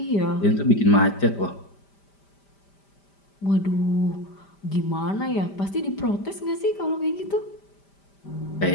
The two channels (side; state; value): right; late; 5.0 ms